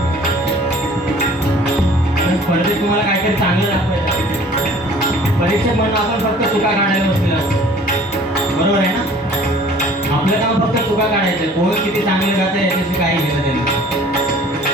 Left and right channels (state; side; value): normal; both; correlation 0.51